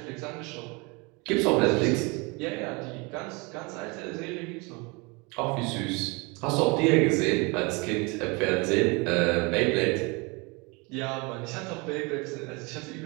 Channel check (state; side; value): quieter; left; 28.3 dB